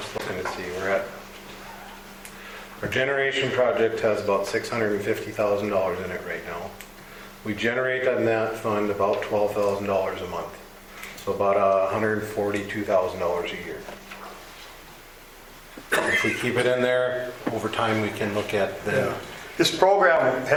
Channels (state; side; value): identical; both; correlation 1.00